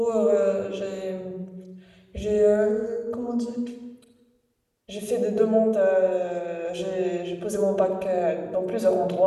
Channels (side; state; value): both; identical; correlation 1.00